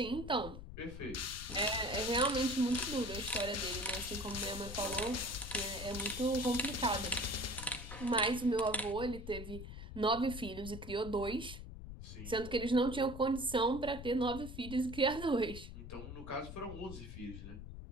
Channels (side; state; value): left; noise; rumble, 10 dB below the sound